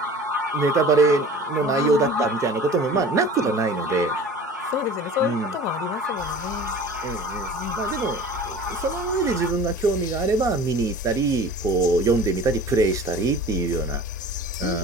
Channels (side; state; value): both; normal; correlation 0.42